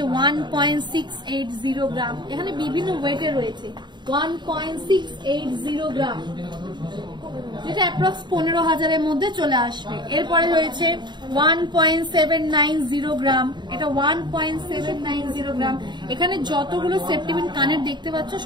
1.680 গ্রাম। এখানে বিভিন্ন ওয়েটের রয়েছে 1.680 গ্রাম, যেটা অ্যাপ্রক্স 15,000-এর মধ্যে চলে আসবে। এরপরে রয়েছে 1.790 গ্রাম, এটা 1.790 গ্রাম। এখানে যতগুলো সেপ্টিবিন কানের দেখতে পাচ্ছ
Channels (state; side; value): late; left; 0.22 ms